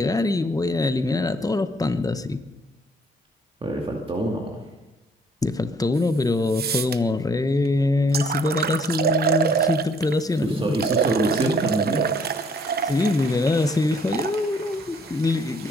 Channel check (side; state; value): both; normal; correlation 0.63